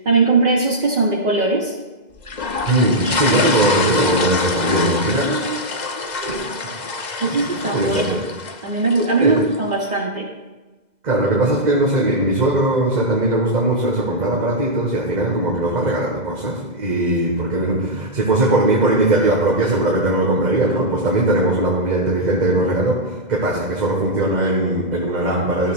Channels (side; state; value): left; late; 2.0 ms